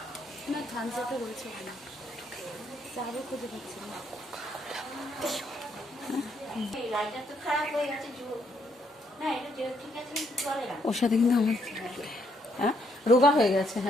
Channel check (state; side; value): normal; both; correlation 0.72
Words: না, থামস আপে রয়েছে ওখানে। চাবো খুঁজে পাচ্ছি না। লাইটার তো খারাপ হয়ে গেছে, না এটা ঠিক আছে, চলে না, ওর সাথে কিন্তু আমার হ্যাঁ রোগা হয়ে গেছে।